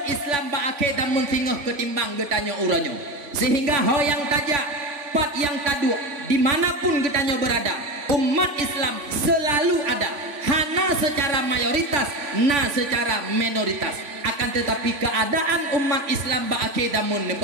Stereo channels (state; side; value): late; left; 3.5 ms